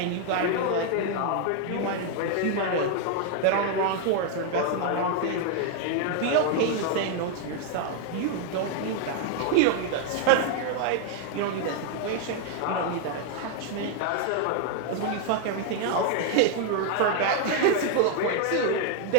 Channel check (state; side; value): different; both; correlation 0.00